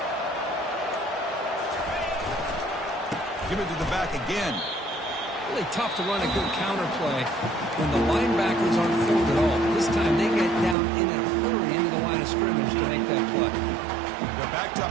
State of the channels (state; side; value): drops out; left; at 10.8 s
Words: Give it to the back again. Really tough to run a good counter play when the linebackers aren't formed at all. This time they get down in a hurry into the line of scrimmage to make that play. They're backed